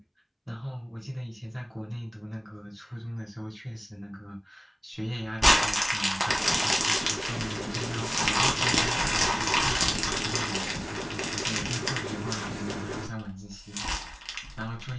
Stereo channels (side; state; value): both; identical; correlation 1.00